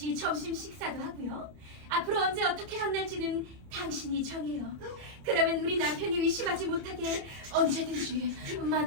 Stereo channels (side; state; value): left; late; 30 ms